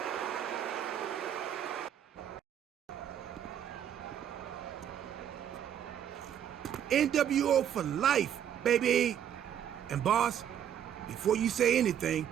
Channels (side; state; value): left; quieter; 9.6 dB